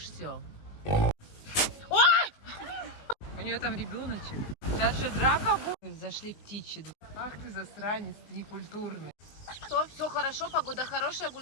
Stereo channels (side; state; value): right; late; 20 ms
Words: У нее там ребеночек. Сейчас же драка будет. Зашли в птичий двор. Ах ты засранец, ты некультурный. Все хорошо, погода хорошая,